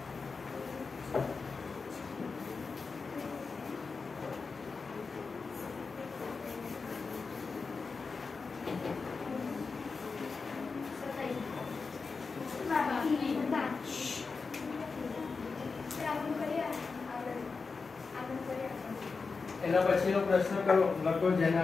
એના પછીનો પ્રશ્ન કરો, લખો જેને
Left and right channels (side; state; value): right; quieter; 4.6 dB